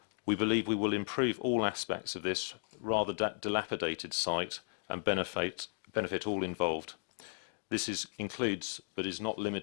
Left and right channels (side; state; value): right; silent; digital silence